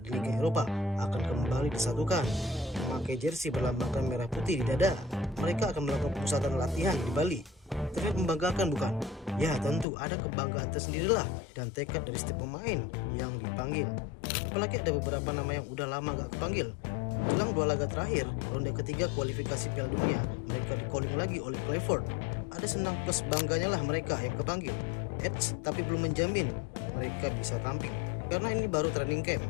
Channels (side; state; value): right; drops out; at 9.9 s